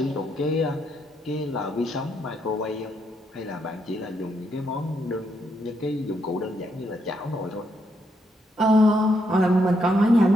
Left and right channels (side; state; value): both; normal; correlation 0.77